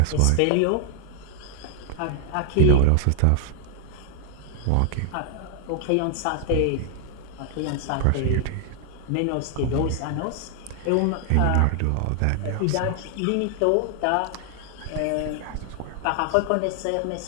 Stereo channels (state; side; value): different; both; correlation 0.00